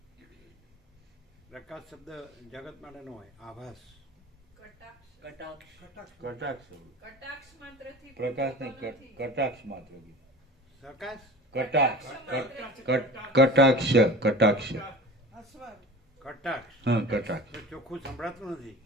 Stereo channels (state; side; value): normal; both; correlation 0.37